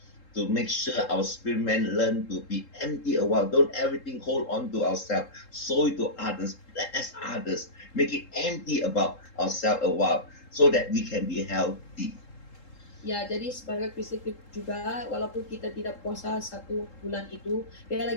to make sure our spirit man learn to be empty a while. Don't everything hold on to ourselves. Sow it to others, bless others, make it empty about ourselves a while, so that we can be healthy. Ya, jadi sebagai Kristen juga, walaupun kita tidak puasa 1 bulan itu,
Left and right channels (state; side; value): late; right; 3.8 ms